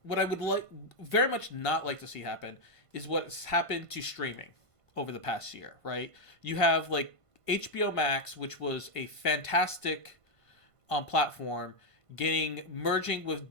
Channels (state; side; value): late; right; 1.5 ms